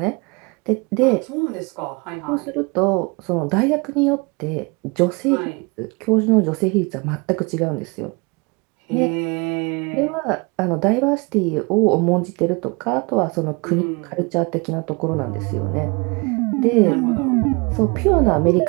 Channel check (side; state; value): left; quieter; 29.1 dB